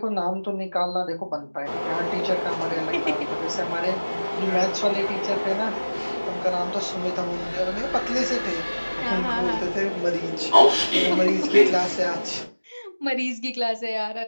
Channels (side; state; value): both; inverted; correlation -1.00